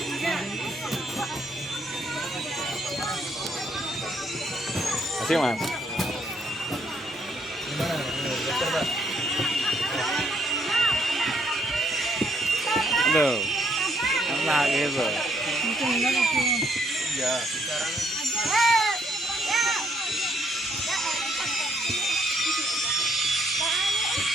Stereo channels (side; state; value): both; normal; correlation 0.70